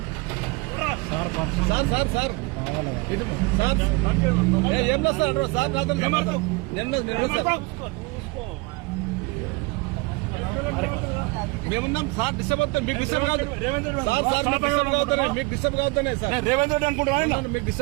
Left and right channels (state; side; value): quieter; left; 26.5 dB